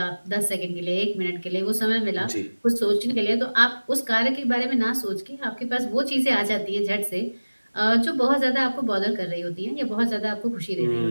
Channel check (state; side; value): inverted; both; correlation -1.00